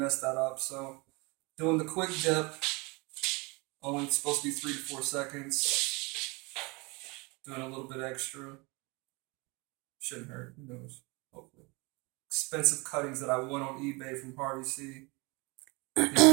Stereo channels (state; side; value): quieter; left; 27.4 dB